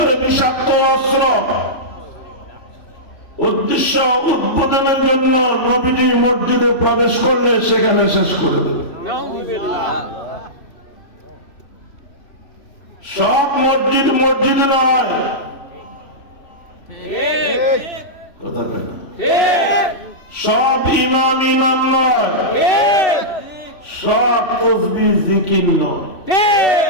বিষাক্ত অস্ত্র, উদ্দেশ্য উদ্বোধনের জন্য নবীজি মসজিদে প্রবেশ করলে সেখানে শেষ করে দেবে। সব মসজিদ মসজিদ নয়, কথা বলে না। সব ইমাম ইমাম নয়, সব তসবিহ জিকির নয়।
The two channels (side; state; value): right; late; 3.5 ms